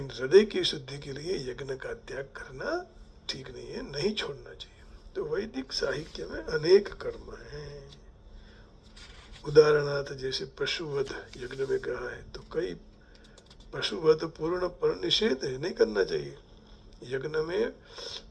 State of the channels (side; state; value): both; identical; correlation 1.00